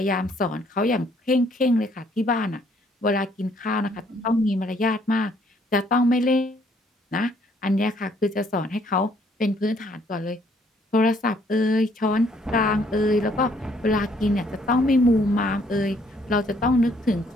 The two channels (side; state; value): both; normal; correlation 0.65